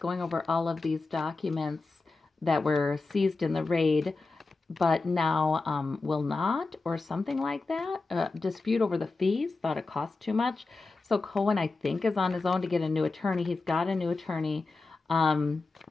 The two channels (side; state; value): right; quieter; 3.7 dB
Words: over all of these documents that were seized in the raid, but now will not, or something like that. Dispute over the fees, thought it cost too much. So Cohen, I think, is on his own to get a new attorney. He's got a new attorney. Um,